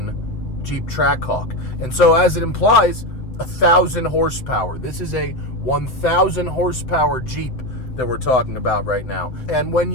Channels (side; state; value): right; late; 7.8 ms